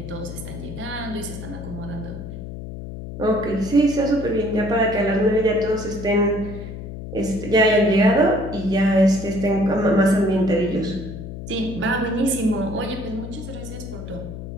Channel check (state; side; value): noise; left; hum, 10 dB below the sound